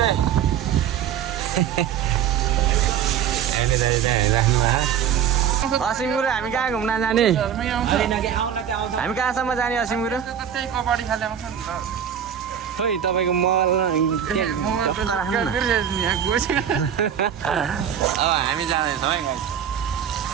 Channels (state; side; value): quieter; left; 9.0 dB